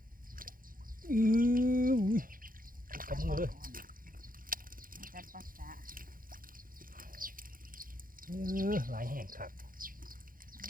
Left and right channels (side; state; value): left; late; 0.41 ms